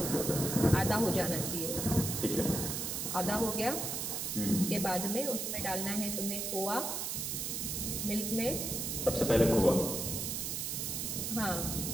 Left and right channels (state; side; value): noise; right; hiss, 2 dB below the sound